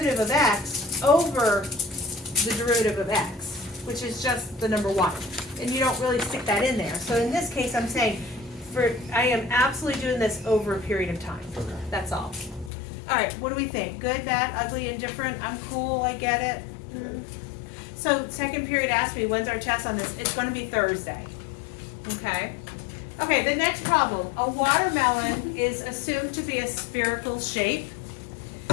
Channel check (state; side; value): drops out; right; at 12.7 s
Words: of x over the derivative of x, which is just the number 1. And you don't really stick that in there. So in this case, I'm saying, I am absolutely doing this over a period of time. Okay. That's all. All right, what do we think? Good, bad, ugly, indifferent? I'm cool, I get it. So second period asked me, when's our test on this? It's going to be Thursday. Okay? Okay, the next problem. A watermelon is assumed to be a spherical shape.